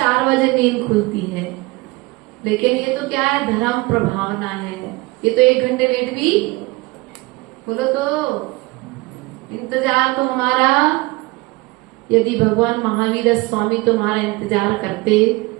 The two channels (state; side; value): quieter; left; 23.0 dB